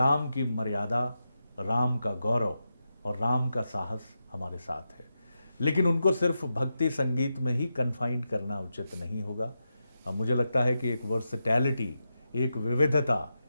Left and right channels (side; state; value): both; inverted; correlation -0.88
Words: की मर्यादा, राम का गौरव और राम का साहस हमारे साथ है। लेकिन उनको सिर्फ भक्ति संगीत में ही कन्फाइंड करना उचित नहीं होगा। मुझे लगता है कि एक वर्सटैलिटी, एक विविधता